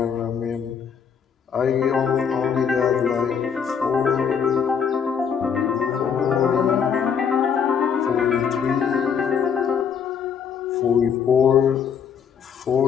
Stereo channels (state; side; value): quieter; right; 7.1 dB